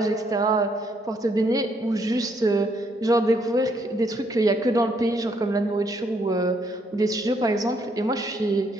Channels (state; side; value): normal; both; correlation 0.71